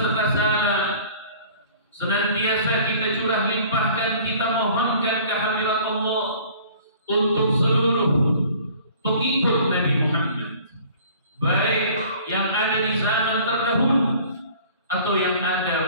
salam senantiasa kita curah limpahkan, kita mohonkan kehadirat Allah untuk seluruh pengikut Nabi Muhammad, baik yang ada di zaman terdahulu atau yang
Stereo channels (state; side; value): inverted; both; correlation -0.50